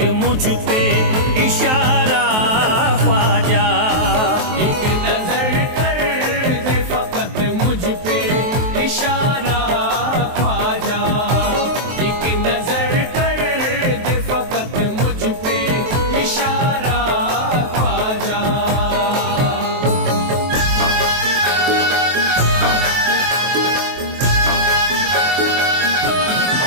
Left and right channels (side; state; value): left; late; 23 ms